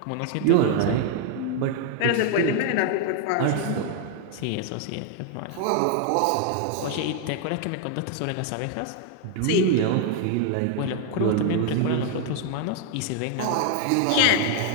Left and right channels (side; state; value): both; different; correlation 0.00